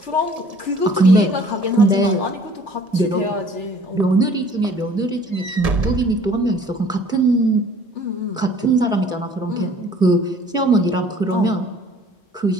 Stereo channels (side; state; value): both; normal; correlation 0.53